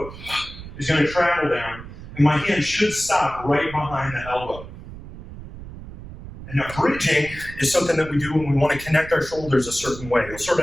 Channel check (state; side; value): noise; right; rumble, 14 dB below the sound